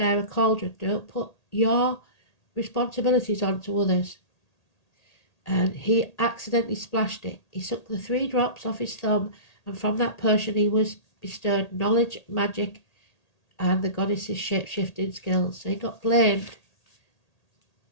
a cauldron. Don't put your responsibilities onto others. And he accidentally splashed it. He sucked the 3 drops off his thumb, and from that potion he was bestowed knowledge, magic, and the goddess's shape-shifting skills. So he got blamed.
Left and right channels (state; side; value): late; right; 1.8 ms